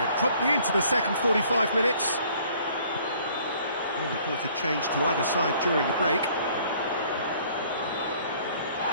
promptly into the second 45 minutes. No reported change to either side during the break.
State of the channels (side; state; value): both; inverted; correlation -0.58